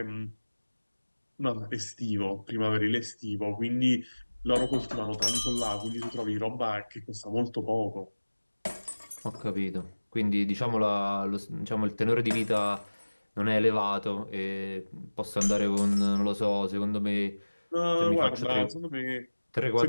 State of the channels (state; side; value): inverted; both; correlation -1.00